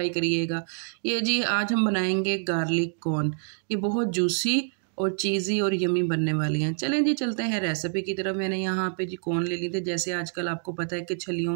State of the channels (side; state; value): left; silent; digital silence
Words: करिएगा। ये जी आज हम बनाएंगे गार्लिक कॉर्न। ये बहुत जूसी और चीज़ी और यमी बनने वाली हैं। चलें जी चलते हैं रेसिपी की तरफ। मैंने यहाँ पे जी कॉर्न ले ली थी। जैसे आजकल आपको पता है कि